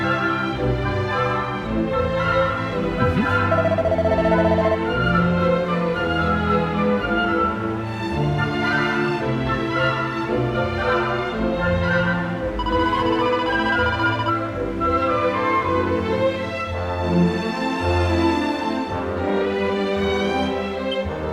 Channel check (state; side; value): identical; both; correlation 1.00